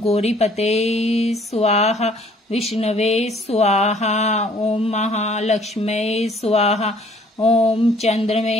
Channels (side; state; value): both; normal; correlation 0.58